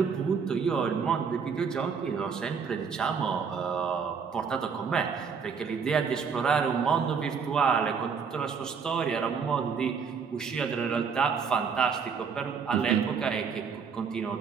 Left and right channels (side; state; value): left; quieter; 6.0 dB